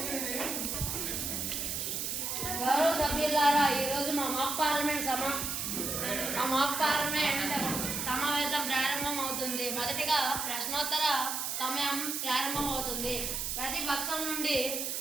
గౌరవ సభ్యులారా, ఈరోజు మా మాక్ పార్లమెంట్ సమావేశం ప్రారంభం అవుతుంది. మొదటిగా ప్రశ్నోత్తర సమయం ప్రారంభం అవుతుంది. ప్రతి పక్షం నుండి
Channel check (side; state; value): right; noise; hiss, 2 dB below the sound